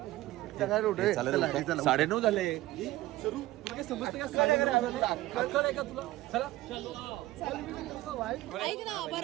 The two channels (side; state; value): left; quieter; 16.9 dB